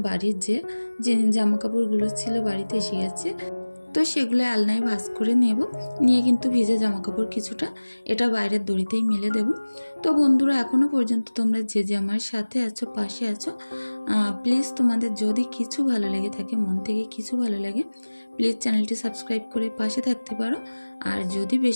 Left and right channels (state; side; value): inverted; both; correlation -1.00